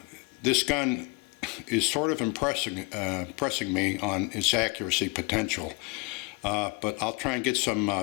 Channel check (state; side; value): quieter; right; 28.0 dB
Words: this gun is sort of impressing me on its accuracy potential. But I'll try and get